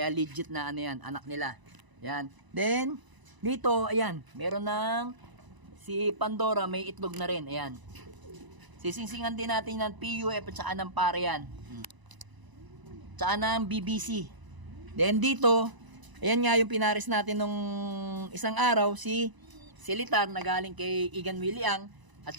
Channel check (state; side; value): late; left; 1.0 ms